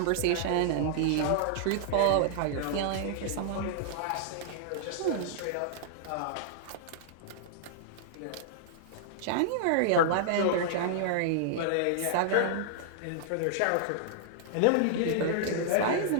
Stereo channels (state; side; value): different; both; correlation -0.01